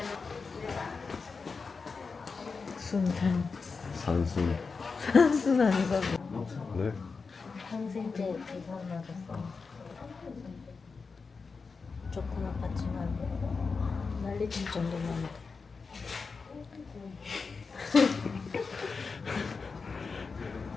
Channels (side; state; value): right; quieter; 4.7 dB